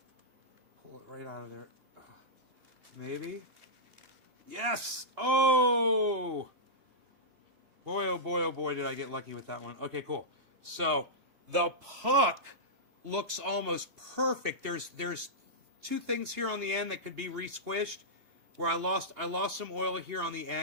Pull it right out of there. Maybe. Yes! Oh! Boy, oh boy, oh boy, did I get lucky with that one. Okay, cool. So, the puck looks almost perfect. There's two things here on the end that could be re-squished. Where I lost some oil here on the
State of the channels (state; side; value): late; left; 2.8 ms